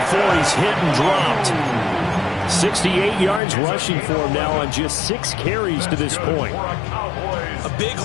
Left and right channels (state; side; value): drops out; right; at 3.4 s